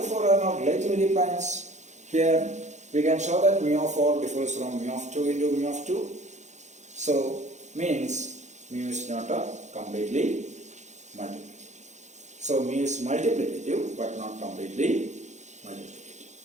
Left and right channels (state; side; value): late; left; 0.34 ms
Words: 4 are not relatively primes, here we can show that mu of 4 differs from mu of 2 into mu of 2. So means mu is not completely multiplicative. So mu is multiplicative but not completely multiplicative.